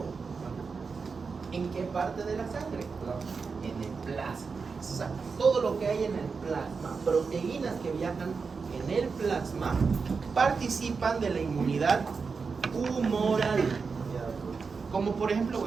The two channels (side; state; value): left; quieter; 5.0 dB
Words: ¿En qué parte de la sangre? En el plasma. O sea, todo lo que hay en el plasma, proteínas que viajan en el plasma, participan de la inmunidad humoral. Como por ejemplo,